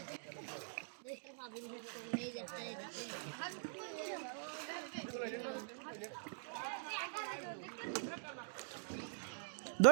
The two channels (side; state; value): left; silent; digital silence